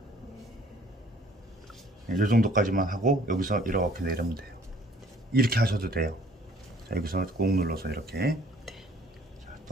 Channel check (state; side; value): normal; both; correlation 0.57